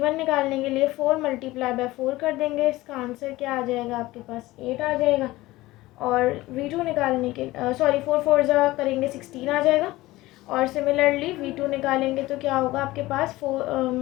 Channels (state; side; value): quieter; right; 18.5 dB